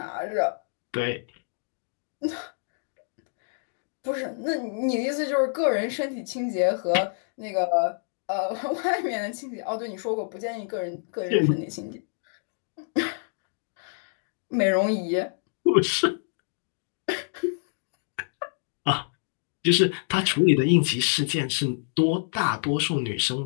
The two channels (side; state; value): right; silent; digital silence